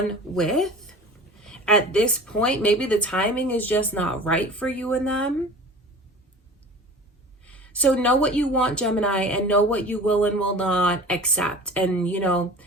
with at this point. Maybe the timing is just not right for you and them. So know what you want, Gemini, and know what you will and will not accept. And, you know,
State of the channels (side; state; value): both; normal; correlation 0.40